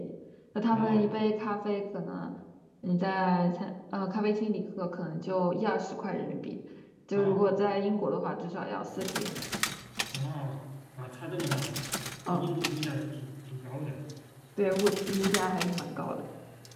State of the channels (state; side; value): identical; both; correlation 1.00